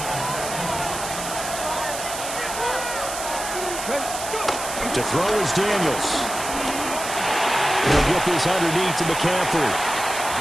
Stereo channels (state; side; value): noise; right; hiss, 7 dB below the sound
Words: To throw is Daniels. He'll get this underneath to McCaffrey.